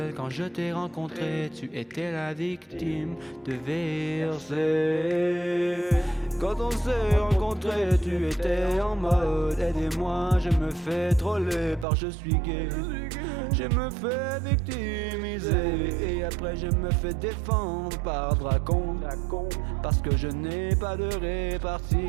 quand je t'ai rencontré, tu étais la victime de VRC. Quand on s'est rencontrés, tu étais en mode aidez-moi, je me fais troller par je suis gay. Je me fais victimiser et après je me fais défendre par Dracon, parce que je n'ai pas de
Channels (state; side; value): drops out; left; at 11.9 s